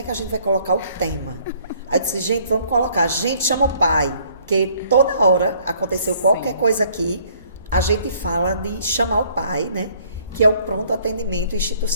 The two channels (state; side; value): inverted; both; correlation -0.61